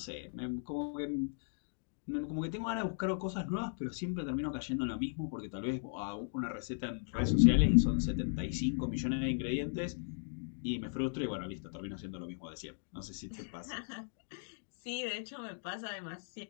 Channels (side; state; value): right; silent; digital silence